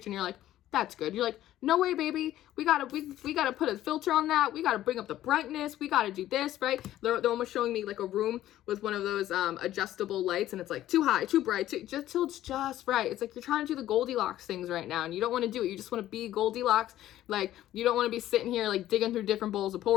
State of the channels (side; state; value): right; quieter; 13.4 dB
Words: and you're like, that's good. You're like, no way, baby. We gotta put a filter on that. We gotta bring up the brightness. We gotta do this, right? They're almost showing me like a room with one of those adjustable lights, and it's like too high, too bright, just till it's just right. It's like you're trying to do the Goldilocks things right now, and you don't want to do it. You just want to be Goldilocks. Like, you don't want to be sitting here like digging through different bowls of